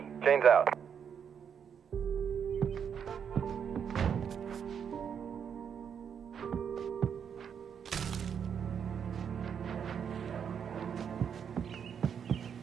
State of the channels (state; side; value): quieter; left; 7.6 dB